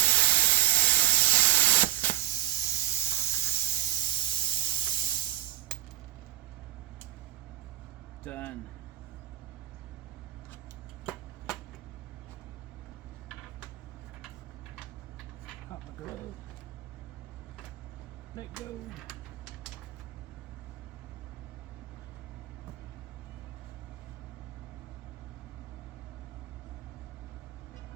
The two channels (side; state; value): left; quieter; 13.6 dB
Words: Done. Pop my glove. Let go.